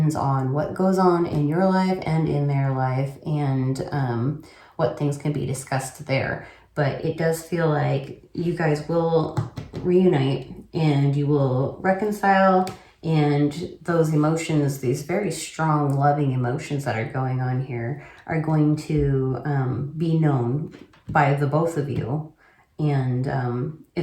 on what goes on in your life and in their life, and what things can be discussed there. But it does feel like you guys will reunite and you will reconcile, and those emotions, these very strong, loving emotions that are going on here, are going to be known by the both of you, and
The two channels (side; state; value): both; identical; correlation 1.00